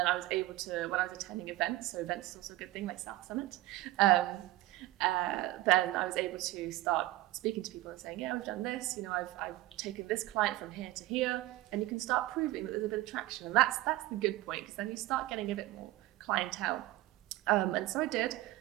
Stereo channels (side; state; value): left; quieter; 17.2 dB